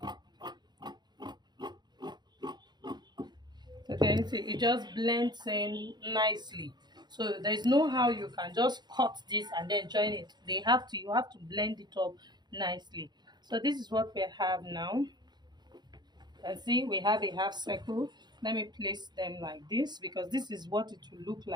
So can you see it just blends in nicely. So there's no how you can just cut this and then join it. You have to blend it up nicely. So this is what we have now. And see, we have a half circle. Let me place them like this because this is what it will look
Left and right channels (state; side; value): late; left; 0.21 ms